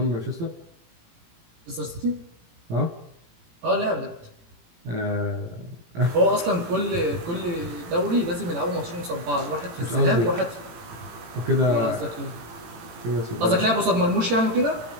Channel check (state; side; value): late; left; 18 ms